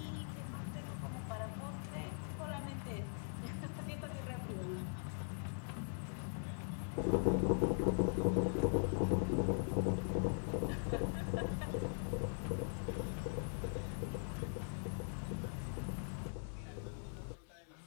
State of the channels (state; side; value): silent; right; 50 dB below the other